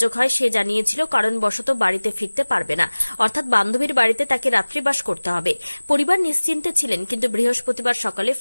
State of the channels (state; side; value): inverted; both; correlation -1.00